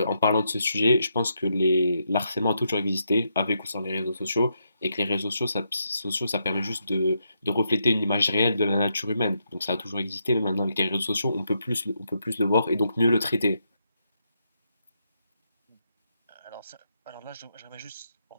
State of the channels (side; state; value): both; inverted; correlation -0.81